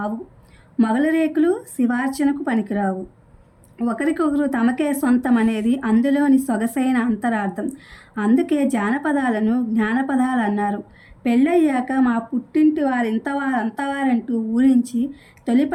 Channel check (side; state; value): both; identical; correlation 1.00